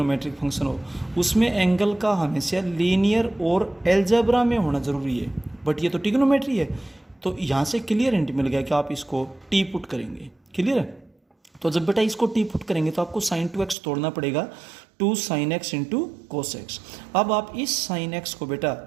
फंक्शन हो, उसमें एंगल का हमेशा लीनियर और एल्जेब्रा में होना जरूरी है। बट ये तो टिग्नोमेट्री है, तो यहाँ से क्लियर हिंट मिल गया कि आप इसको टी पुट करेंगे। क्लियर है? तो जब बेटा इसको टी पुट करेंगे तो आपको साइन 2x तोड़ना पड़ेगा 2 sin x into cos x. अब आप इस साइन एक्स को बेटा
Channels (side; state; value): left; drops out; at 13.8 s